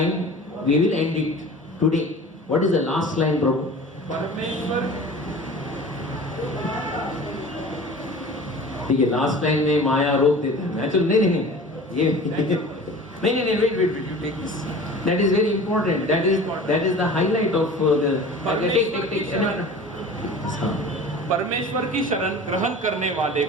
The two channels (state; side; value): normal; both; correlation 0.40